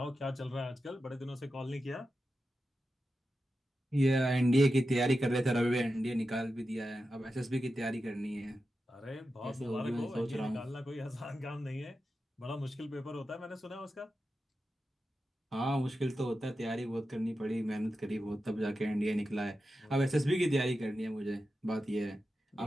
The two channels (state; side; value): normal; both; correlation 0.91